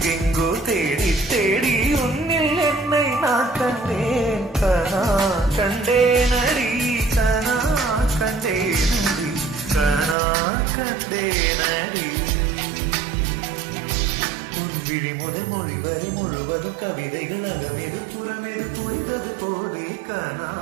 தேடி தேடி உன்னில் என்னை நான் கண்டேன். கனா கண்டேனடி, கனா கண்டேனடி, கனா கண்டேனடி. விழி முதல் மொழி வரை முழுவதும் கவிதைகள் அகமெது புறமெது புரிந்தது போதே கனா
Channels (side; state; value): left; drops out; at 10.2 s